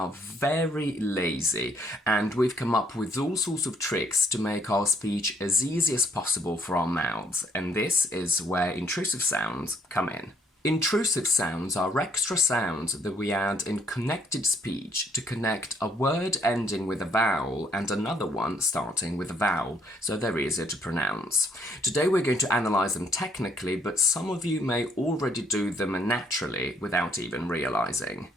very lazy, and we've come up with all sorts of tricks to make our speech as easy as possible for our mouths, and this is where intrusive sounds come in. Intrusive sounds are extra sounds that we add in connected speech to connect a word ending with a vowel and another one starting with a vowel, so they're easier to pronounce. Today we're going to analyse them technically, but some of you may already do them naturally without even realising.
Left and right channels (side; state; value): both; normal; correlation 0.67